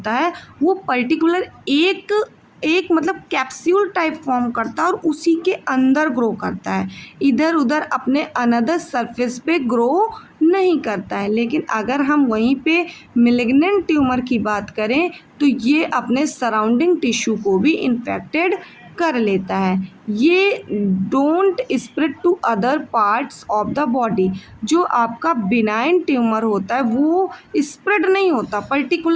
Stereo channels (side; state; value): both; identical; correlation 1.00